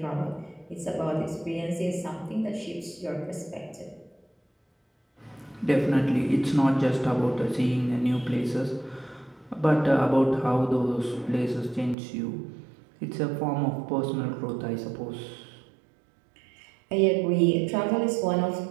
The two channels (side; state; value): left; drops out; at 12.0 s